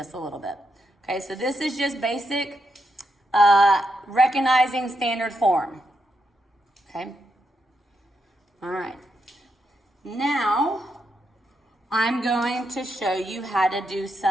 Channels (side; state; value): both; normal; correlation 0.82